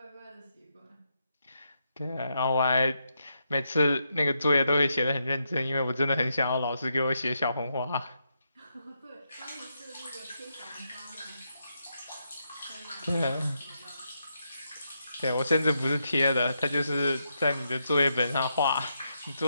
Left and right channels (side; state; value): both; inverted; correlation -0.82